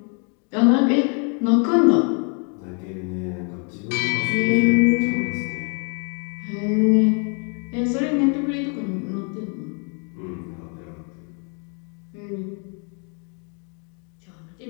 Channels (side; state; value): right; quieter; 39.3 dB